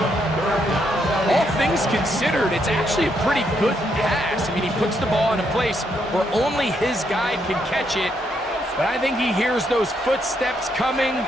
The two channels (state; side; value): normal; both; correlation 0.76